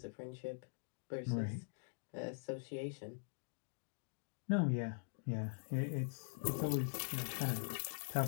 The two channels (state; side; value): silent; right; digital silence